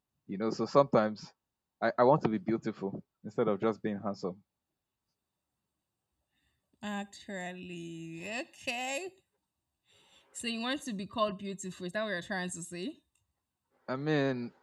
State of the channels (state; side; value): identical; both; correlation 1.00